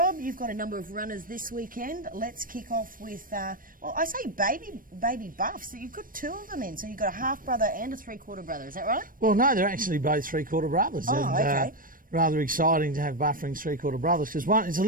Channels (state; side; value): late; left; 0.40 ms